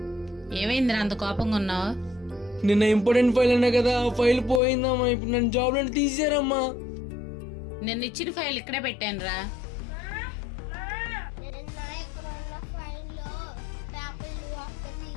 ఏమైందిరా అంత కోపంగా ఉన్నావు? నిన్న ఇంపార్టెంట్ ఫైల్ అన్నా కదా, ఆ ఫైల్ పోయిందమ్మా. ఇప్పుడు నన్ను జాబ్ నుండి తీసేరమ్మా. నిన్న ఇచ్చిన ఫైల్ ఇక్కడే పెట్టాను రా.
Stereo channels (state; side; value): drops out; right; at 4.6 s